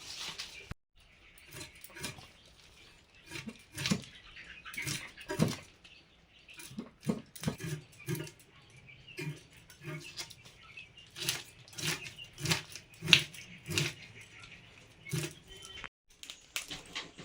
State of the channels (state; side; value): identical; both; correlation 1.00